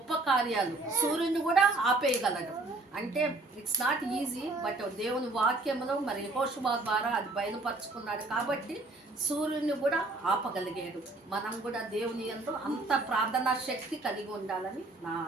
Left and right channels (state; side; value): quieter; left; 3.1 dB